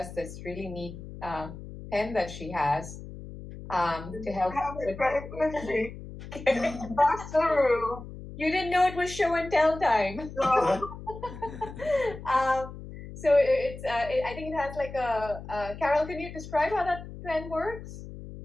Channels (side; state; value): left; noise; hum, 12 dB below the sound